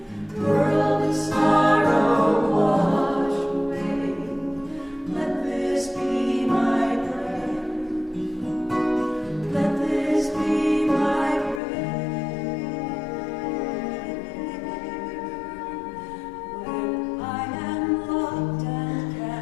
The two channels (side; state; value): right; drops out; at 11.6 s